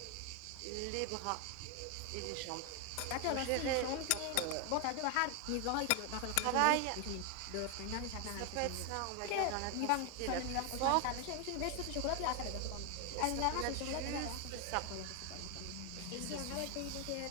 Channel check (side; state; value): both; different; correlation 0.01